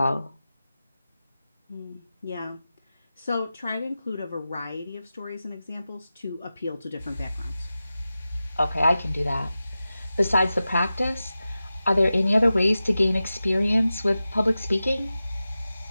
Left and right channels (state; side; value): inverted; both; correlation -0.94